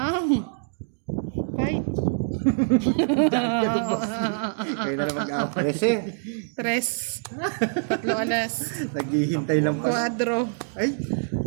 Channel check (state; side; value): silent; left; digital silence